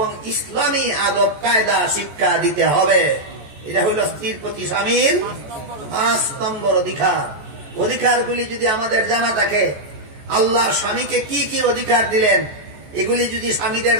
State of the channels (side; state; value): left; late; 14 ms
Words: ইসলামী আদব কায়দা শিক্ষা দিতে হবে। এটা হইল স্ত্রীর প্রতি স্বামীর 5 নম্বর অধিকার। অধিকারগুলি যদি আমাদের জানা থাকে, আল্লাহ স্বামীকে কি কি অধিকার দিলেন এগুলি যদি স্বামীদের